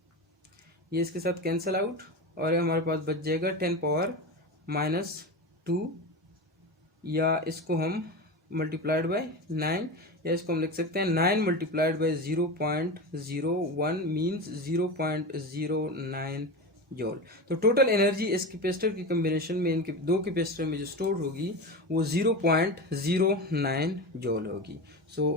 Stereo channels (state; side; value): normal; both; correlation 0.24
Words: ये इसके साथ कैंसिल आउट और हमारे पास बच जाएगा 10⁻⁻2, या इसको हम मल्टीप्लाइड बाई 9, या इसको हम लिख सकते हैं 9 मल्टीप्लाइड बाई 0.01 मीन्स 0.09 जॉल। तो टोटल एनर्जी इस कैपेसिटर की कम्बिनेशन में, इनके दो कैपेसिटर में जो स्टोर होगी वो 0.09 जॉल होगी।